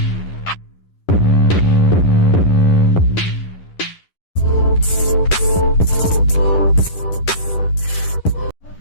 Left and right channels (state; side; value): late; right; 11 ms